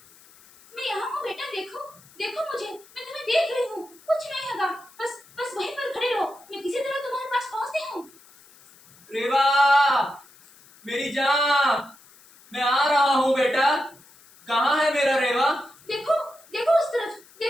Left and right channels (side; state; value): left; noise; hiss, 26 dB below the sound